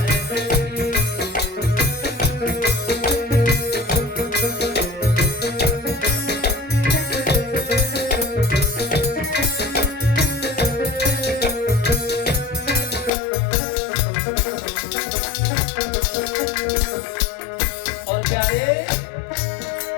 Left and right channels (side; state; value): right; drops out; at 13.1 s